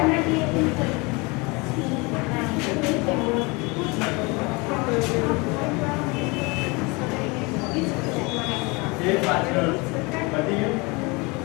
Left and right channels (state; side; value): quieter; right; 27.1 dB